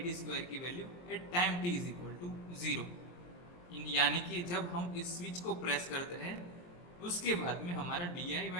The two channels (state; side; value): late; right; 23 ms